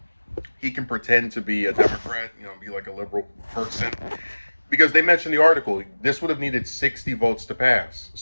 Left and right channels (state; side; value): inverted; both; correlation -1.00